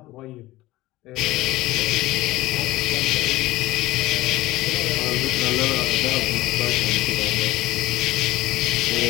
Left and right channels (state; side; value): quieter; right; 17.9 dB